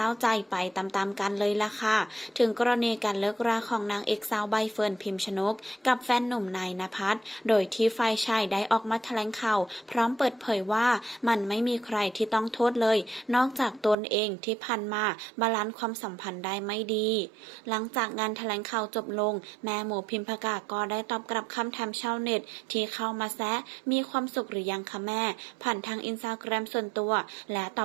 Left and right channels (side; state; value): left; drops out; at 14.0 s